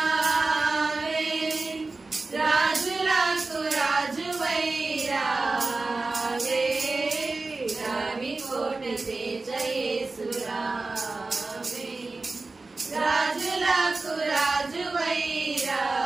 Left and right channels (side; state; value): left; quieter; 3.5 dB